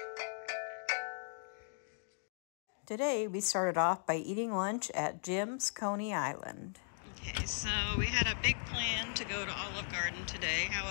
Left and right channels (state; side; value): silent; right; digital silence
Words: Today we started off by eating lunch at Jim's Coney Island. Okay, so we had a big plan to go to Olive Garden today.